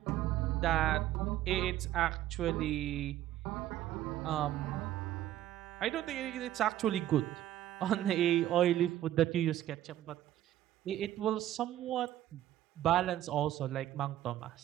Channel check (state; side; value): quieter; left; 13.1 dB